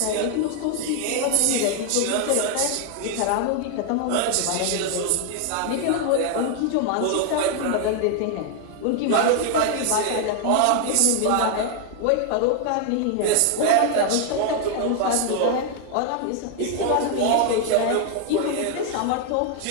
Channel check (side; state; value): both; different; correlation 0.00